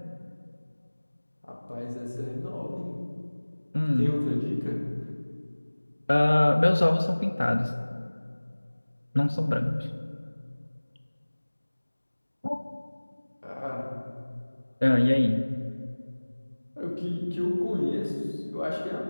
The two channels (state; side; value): inverted; both; correlation -1.00